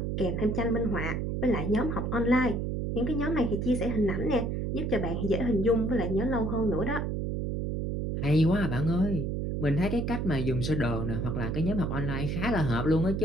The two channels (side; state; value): right; noise; hum, 1 dB below the sound